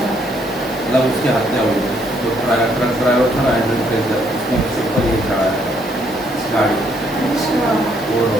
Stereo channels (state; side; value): normal; both; correlation 0.70